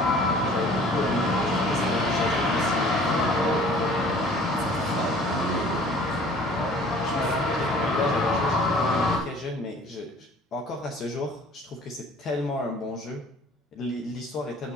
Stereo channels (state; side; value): normal; both; correlation 0.51